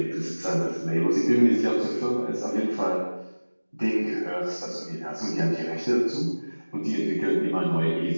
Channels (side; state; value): both; inverted; correlation -1.00